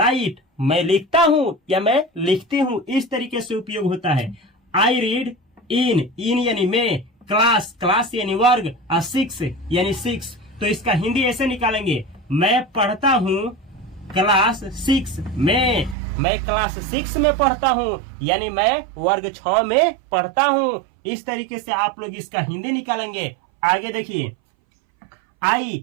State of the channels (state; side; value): drops out; left; at 16.0 s